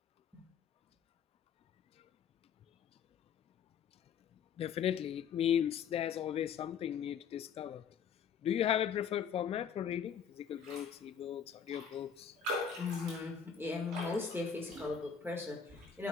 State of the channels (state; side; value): quieter; right; 7.3 dB